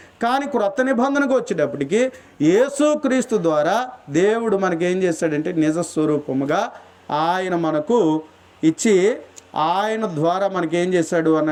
కానీ క్రొత్త నిబంధనకు వచ్చేటప్పటికి యేసుక్రీస్తు ద్వారా దేవుడు మనకేం చేశాడంటే నిజ స్వరూపముగా ఆయన మనకు ఇచ్చి ఆయన ద్వారా మనకేం చేశాడు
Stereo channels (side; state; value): both; identical; correlation 1.00